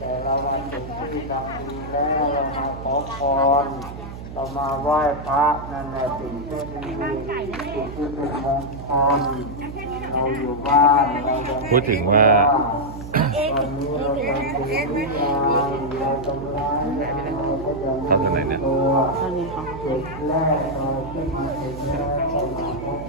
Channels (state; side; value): noise; right; hum, 11 dB below the sound